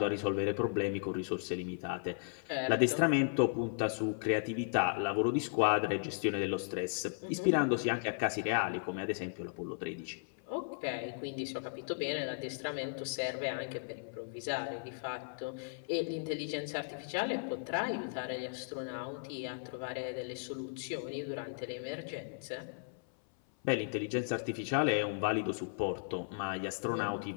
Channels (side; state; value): right; silent; 54 dB below the other